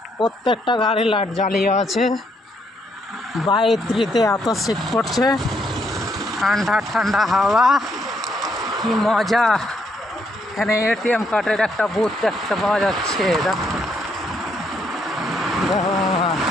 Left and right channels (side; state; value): both; normal; correlation 0.74